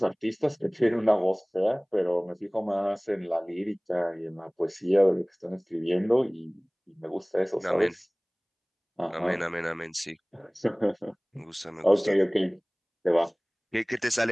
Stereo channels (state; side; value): identical; both; correlation 1.00